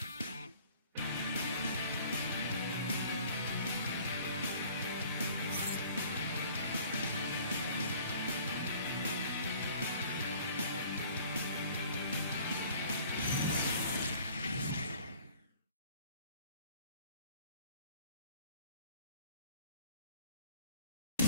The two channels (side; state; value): both; inverted; correlation -0.52